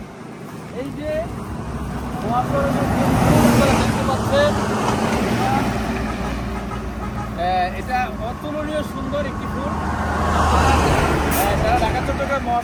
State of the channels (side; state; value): both; identical; correlation 1.00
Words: এই যে মহাসড়কের দেখতে পাচ্ছেন, এটা অতুলনীয় সুন্দর একটি ফুল। যারা ঢাকা চট্টগ্রাম